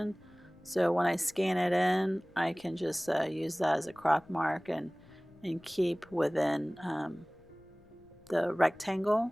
so when I scan it in I can just use that as a crop mark and keep within the rectangle,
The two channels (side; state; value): left; noise; rumble, 28 dB below the sound